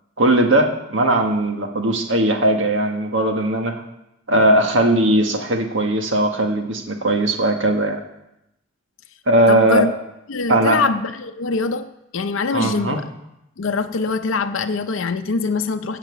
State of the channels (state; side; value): normal; both; correlation -0.02